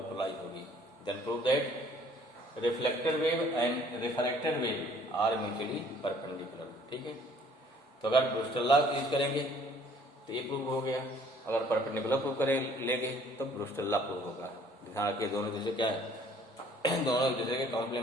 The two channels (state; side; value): normal; both; correlation 0.57